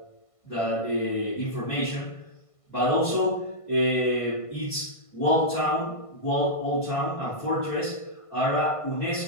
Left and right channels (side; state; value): right; late; 1.5 ms